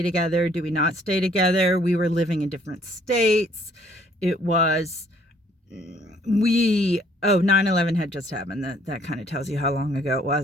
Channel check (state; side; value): normal; both; correlation 0.62